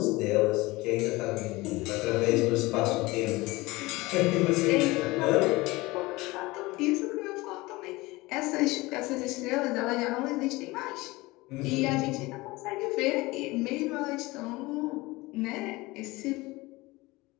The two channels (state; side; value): quieter; right; 21.5 dB